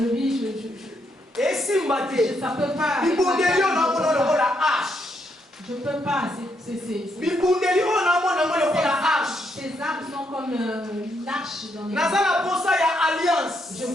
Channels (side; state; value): both; normal; correlation 0.77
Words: Ça peut pas. Je peux pas. Ces armes sont comme une arche dans les mains. Je